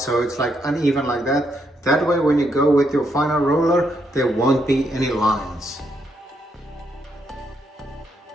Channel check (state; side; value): normal; both; correlation 0.77